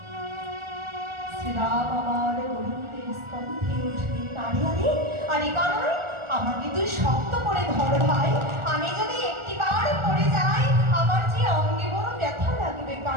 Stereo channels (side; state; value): left; late; 1.4 ms